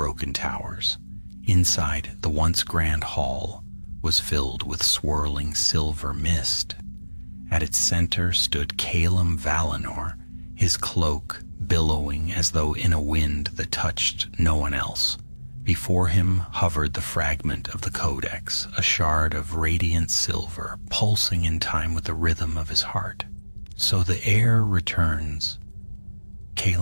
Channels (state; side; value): inverted; both; correlation -1.00